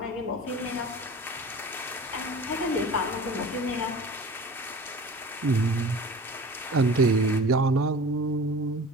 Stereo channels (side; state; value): both; normal; correlation 0.39